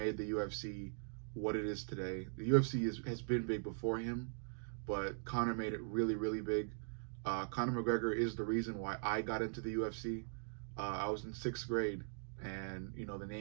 the UFC what it is today. The UFC has been big before him, but Conor made it really, really big. Conor McGregor is the reason why I got into the UFC. I was in 6th grade, and the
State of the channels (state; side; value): silent; left; digital silence